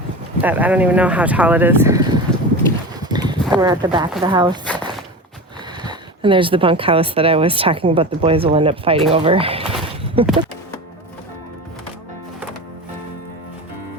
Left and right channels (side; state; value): both; normal; correlation 0.29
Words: that I don't even know how tall it is. And we're at the back of the house. And there's the bunkhouse that I was talking about the boys will end up fighting over.